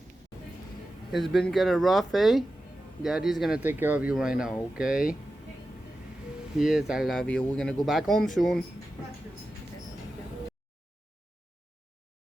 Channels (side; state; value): both; normal; correlation 0.92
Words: It's been kind of rough, eh? Daddy's gonna take care of you right now, okay? Yes, I love you. We're gonna go back home soon.